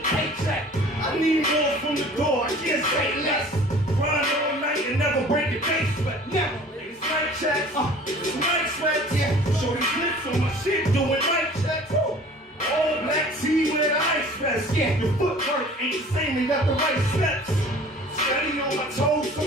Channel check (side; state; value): both; normal; correlation 0.47